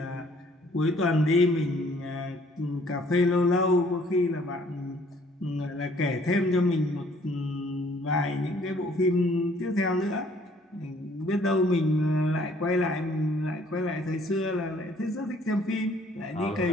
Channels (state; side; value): normal; both; correlation 0.60